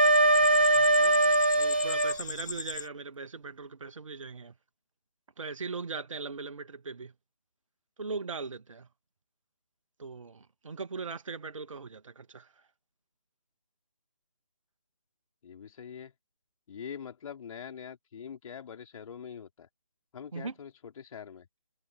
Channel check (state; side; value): inverted; both; correlation -0.59